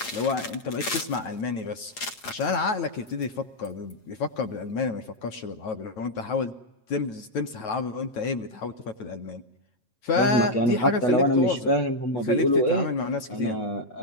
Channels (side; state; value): right; late; 8.7 ms